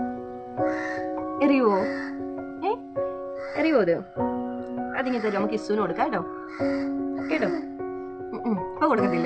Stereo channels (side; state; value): both; identical; correlation 1.00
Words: എറിയുവോ? എറിയുവോ? അതിങ്ങനെ തരും. നമുക്ക് ഇസുവിന് കൊടുക്കാം കേട്ടോ. ഇപ്പൊ